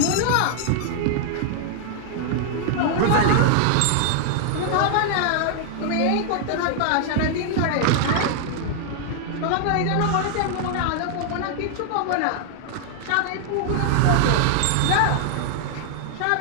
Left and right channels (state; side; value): different; both; correlation 0.00